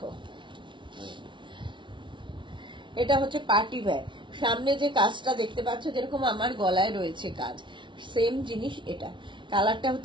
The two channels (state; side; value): late; left; 0.24 ms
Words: এটা হচ্ছে পার্টি ওয়্যার। সামনে যে কাজটা দেখতে পাচ্ছ, যেরকম আমার গলায় রয়েছে কাজ, সেম জিনিস এটা। কালারটা